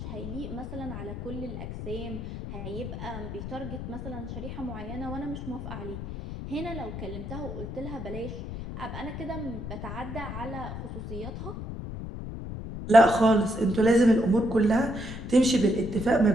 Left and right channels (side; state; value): left; noise; rumble, 8 dB below the sound